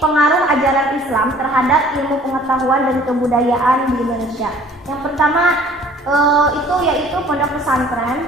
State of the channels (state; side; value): normal; both; correlation 0.53